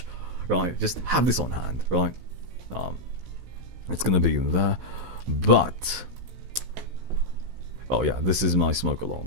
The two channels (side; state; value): left; late; 16 ms